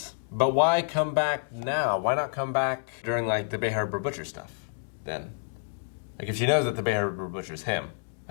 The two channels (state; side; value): silent; right; digital silence